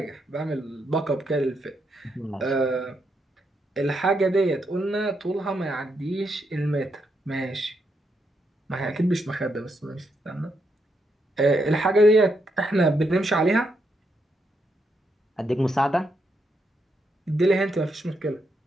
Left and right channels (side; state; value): both; normal; correlation 0.80